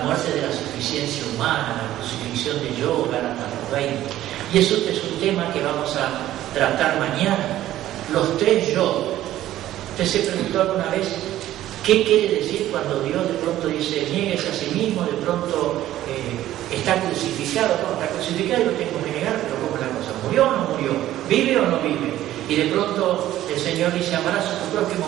de la suficiencia humana, la crucifixión de yo, Gálatas 20. Y eso es un tema que vamos a tratar mañana. Los tres yo. ¿Usted se preguntó alguna vez qué quiere decir cuando Dios de pronto dice niéguese a sí mismo, de pronto está crucificado? No, está crucificado y lo tengo que negar, pero ¿cómo es la cosa? ¿Murió o no murió? ¿Vive o no vive? Y de pronto el Señor dice amarás a tu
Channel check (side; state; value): left; quieter; 13.7 dB